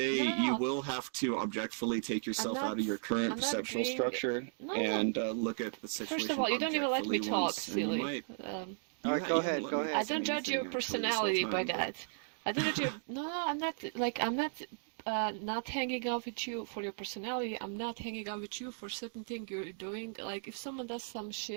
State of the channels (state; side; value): silent; left; digital silence